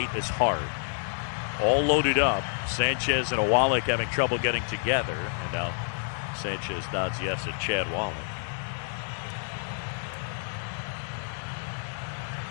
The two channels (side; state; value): right; silent; 59 dB below the other